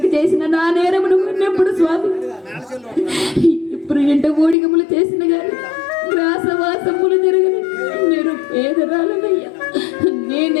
చేసిన నా నేరమును ఎప్పుడు స్వామి ఇప్పుడు ఇంట ఓడిగములు చేసిన గాని గ్రాసవాసములు జరగని నేను పేదరాలనయ్యా.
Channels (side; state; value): right; drops out; at 4.5 s